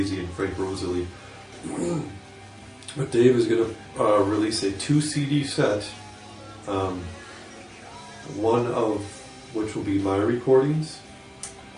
and Frank Rosalie. But Dave is going to release a 2 CD set, one of which will be my recordings,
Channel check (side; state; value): both; identical; correlation 1.00